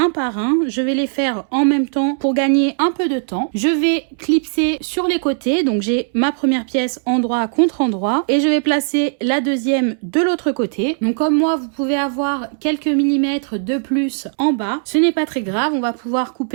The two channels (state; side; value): silent; left; 67 dB below the other